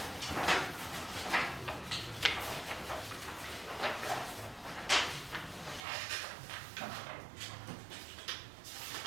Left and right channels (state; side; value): drops out; left; at 5.9 s